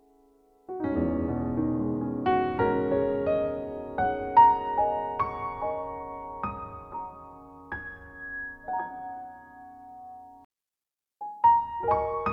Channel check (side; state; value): both; identical; correlation 1.00